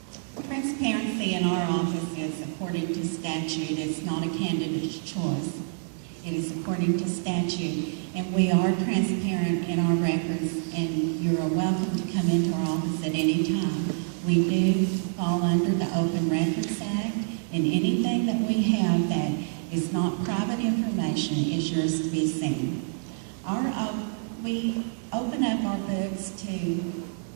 Transparency in our office is according to statute. It's not a candidate's choice. It is according to statute. And we are transparent in our records, and you're welcome to come into our office at any time. We do fall under the Open Records Act, and anything that we have that is not private information is yours to be seen. We open up our books to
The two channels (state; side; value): silent; left; digital silence